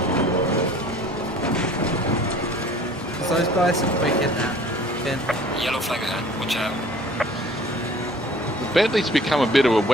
those guys are quick in that. Ben. Yellow flag ahead. Watch out. The Bentley's become a bit of a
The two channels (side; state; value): both; normal; correlation 0.50